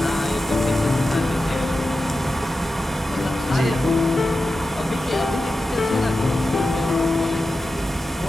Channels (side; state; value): both; normal; correlation 0.92